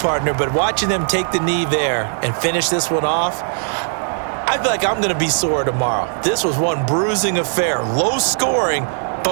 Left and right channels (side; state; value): left; silent; 67 dB below the other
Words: but watching them take the knee there and finish this one off, I feel like I'm going to be sore tomorrow. This was one bruising affair. Low scoring,